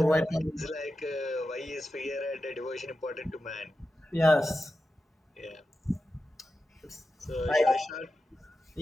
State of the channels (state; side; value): normal; both; correlation 0.91